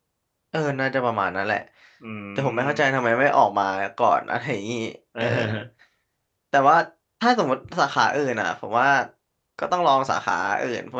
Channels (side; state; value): both; identical; correlation 1.00